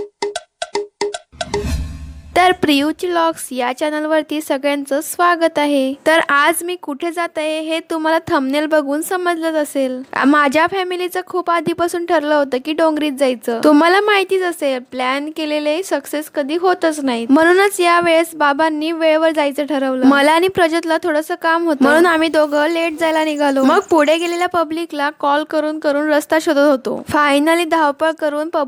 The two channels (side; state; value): both; identical; correlation 1.00